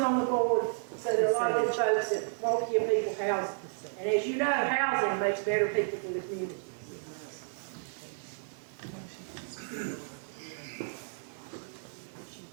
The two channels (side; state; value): left; silent; 56 dB below the other